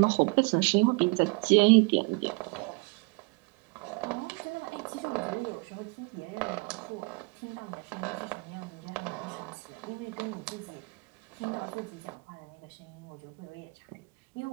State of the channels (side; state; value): left; quieter; 29.3 dB